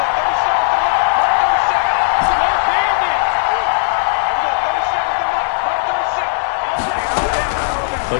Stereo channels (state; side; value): silent; right; 67 dB below the other